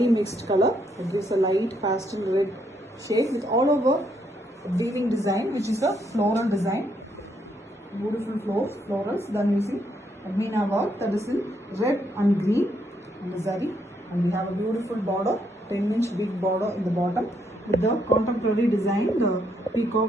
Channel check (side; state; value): both; normal; correlation 0.75